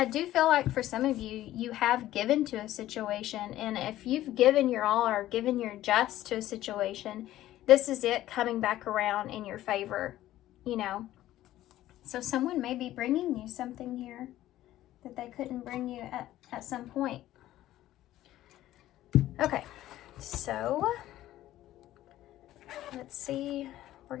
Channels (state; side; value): quieter; right; 14.2 dB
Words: do feel like for some of you, you have given to a situation. And if you've given your all or given your just to a situation, this is it coming back around in your favor, you know. So someone may be bringing you something here that they couldn't bring you at some point. Okay, so let's see. We're